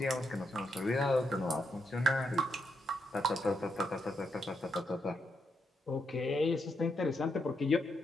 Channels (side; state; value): both; normal; correlation 0.80